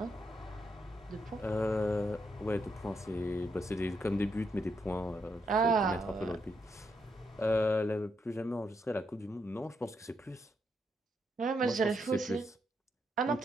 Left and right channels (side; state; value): both; normal; correlation 0.80